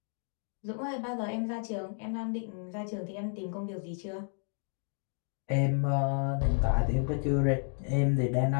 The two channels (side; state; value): right; silent; 56 dB below the other